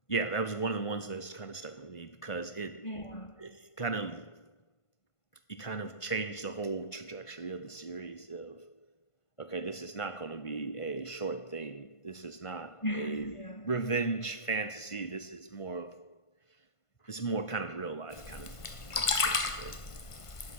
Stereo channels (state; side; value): late; right; 1.5 ms